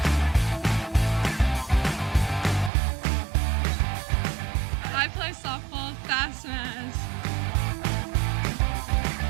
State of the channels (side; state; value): left; drops out; at 2.7 s